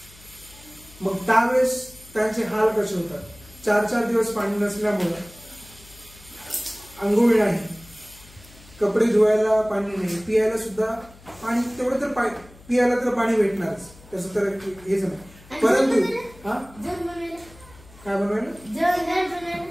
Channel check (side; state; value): left; noise; hum, 23 dB below the sound